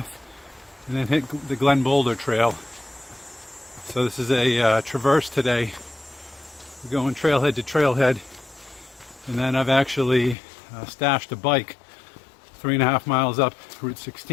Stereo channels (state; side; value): drops out; right; at 10.4 s